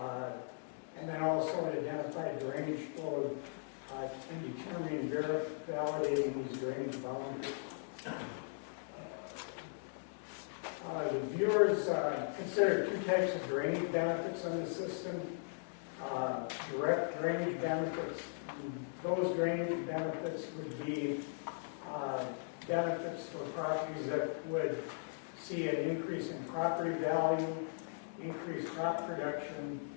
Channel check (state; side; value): silent; right; digital silence